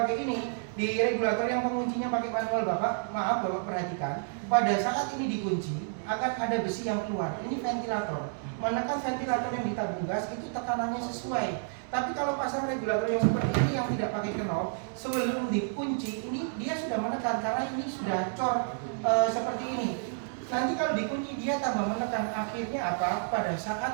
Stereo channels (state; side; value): silent; left; digital silence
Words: ini? Di regulator yang penguncinya pakai manual Bapak, maaf Bapak perhatikan, pada saat ini dikunci akan ada besi yang keluar. Ini ventilator. Menekan ventilator yang di tabung gas itu tekanannya sesuai. Tapi kalau pasang regulator yang seperti ini yang tidak pakai knob, sebelum dikunci ini dia sudah menekan karena ini sudah cor seperti ini. Nanti kalau dikunci dia tambah menekan, akhirnya apa? Pada